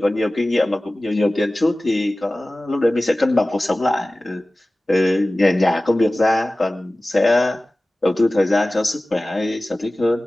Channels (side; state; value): both; normal; correlation 0.97